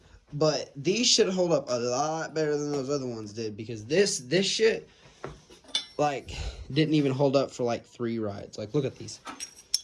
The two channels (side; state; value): both; identical; correlation 1.00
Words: But these should hold up a lot better than those other ones did because this shit, like, didn't even hold up for like 3 rides. Like, look at these.